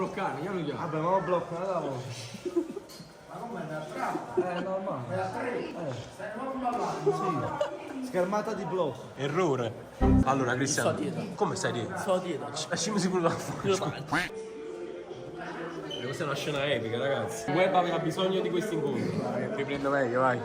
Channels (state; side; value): identical; both; correlation 1.00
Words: chiamo chiamo. Vabbè, ma lo blocco, non la voce. Ma come da trappa? È normale. Da tre? Stai non ballando? Sì. Schermata di blocco. Errore. Allora, Cristiano. Sto dietro. Come stai dietro? Sto dietro. Lasciami sicuro la faccia. Questa è una scena epica, ragazzi. Il web aveva bisogno di questi incontri. Riprendo meglio, vai.